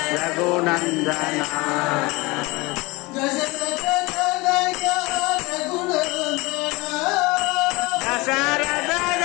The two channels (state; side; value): quieter; right; 23.8 dB